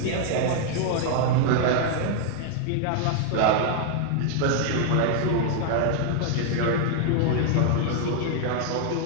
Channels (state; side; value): different; both; correlation 0.00